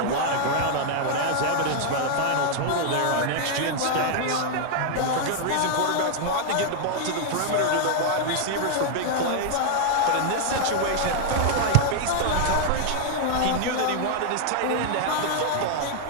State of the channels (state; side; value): different; both; correlation 0.00